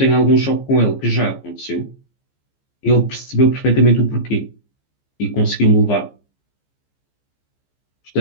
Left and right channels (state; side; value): late; right; 15 ms